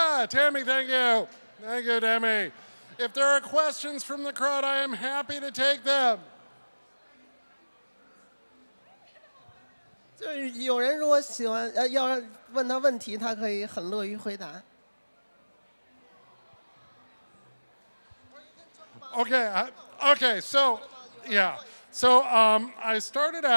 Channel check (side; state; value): both; inverted; correlation -1.00